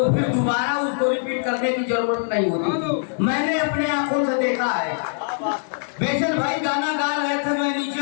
फिर दोबारा उसको रिपीट करने की जरूरत नहीं होती थी। मैंने अपने आंखों से देखा है। बेचन भाई गाना गा रहे थे, मैं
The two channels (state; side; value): silent; right; 64 dB below the other